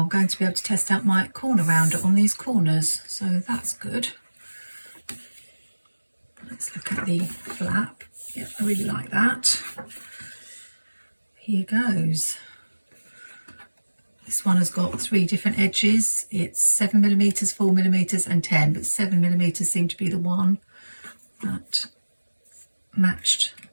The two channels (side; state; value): both; inverted; correlation -1.00